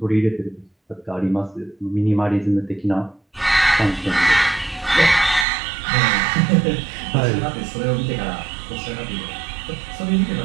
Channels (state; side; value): drops out; left; at 5.5 s